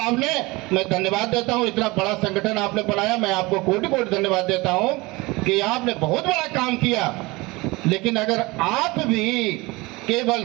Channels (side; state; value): left; quieter; 23.0 dB